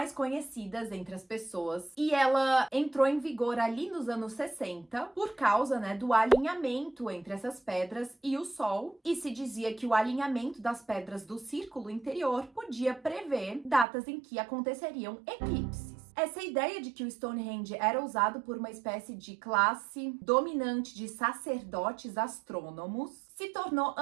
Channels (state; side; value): drops out; left; at 13.9 s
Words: conhecidas entre as pessoas e ela entrou em vigor ali nos anos 60 por causa, do alinhamento entre essas pedras e o Sol, e se dizia que o alinhamento das pedras do círculo interior podia prever datas em que aconteceriam eclipses. Essa ideia de que o Stonehenge era usado por uma espécie de classe dominante de sacerdotes astrônomos se tornou